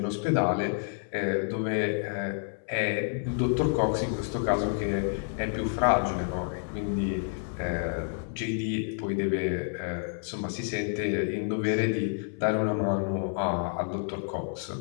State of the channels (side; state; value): right; silent; 57 dB below the other